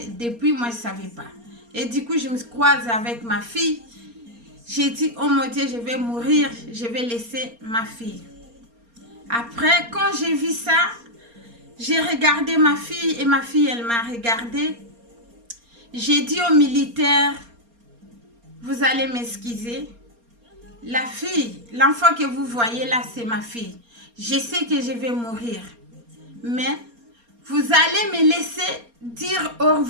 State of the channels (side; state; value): left; late; 4.3 ms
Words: depuis, moi, je ne savais pas. Et du coup, je me croise avec ma fille. J'ai dit, oh mon Dieu, je vais mourir, je vais laisser ma fille. Après, quand j'ai vu ça, j'ai regardé ma fille et ma fille, elle m'a regardé. J'ai dit aux militaires, vous allez m'excuser. La fille, l'enfant que vous voyez là, c'est ma fille. Je sais que je vais mourir. Mais vous allez me laisser dire au